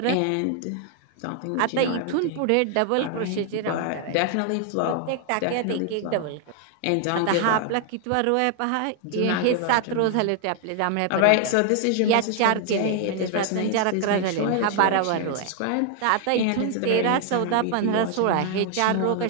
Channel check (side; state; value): both; different; correlation 0.00